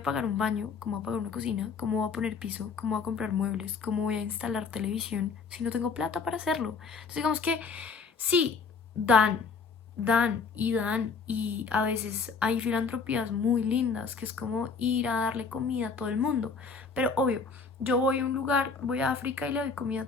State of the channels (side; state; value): right; quieter; 5.0 dB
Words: pagar un baño, cómo voy a pagar una cocina, cómo voy a poner piso, cómo voy a comprar muebles, cómo voy a instalar televisión si no tengo plata para hacerlo. Entonces digamos que sí, dan y a veces hay filantropías muy lindas que es como ir a darle comida a todo el mundo. Pero obvio, yo voy a un lugar, voy a África y le doy comida